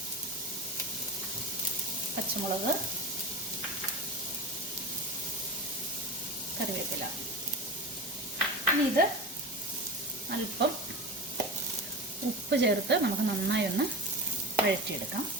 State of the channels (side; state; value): both; normal; correlation 0.29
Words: പച്ചമുളക്, കറിവേപ്പില. ഇനി ഇത് അല്പം ഉപ്പ് ചേർത്ത് നമുക്ക് നന്നായി ഒന്ന് വഴറ്റിയെടുക്കാം.